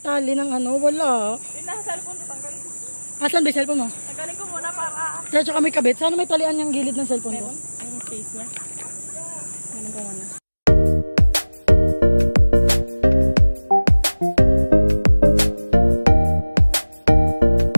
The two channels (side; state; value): both; inverted; correlation -1.00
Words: ng ano, wala. Yung nasa cellphone ko, tanggalin ko. Asan ba yung cellphone mo? Tanggalin ko muna para... Kaya tsaka may kabit. Sana may talian yung gilid ng cellphone ko. Yung case niya. Tanggalin ko muna.